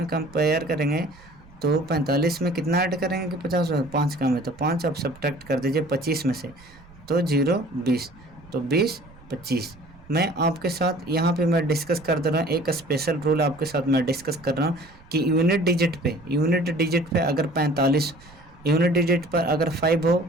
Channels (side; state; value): right; noise; rumble, 24 dB below the sound